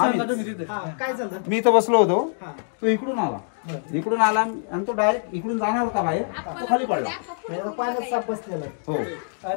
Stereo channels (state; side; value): silent; right; 62 dB below the other